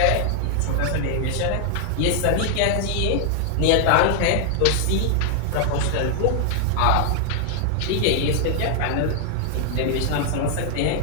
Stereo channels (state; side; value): different; both; correlation 0.00